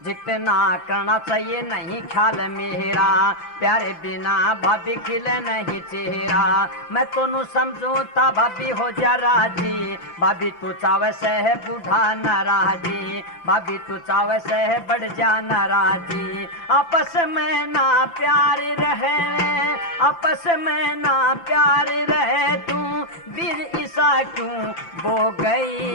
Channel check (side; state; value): right; late; 5.9 ms